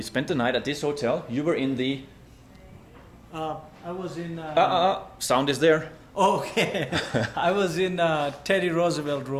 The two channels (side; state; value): both; identical; correlation 1.00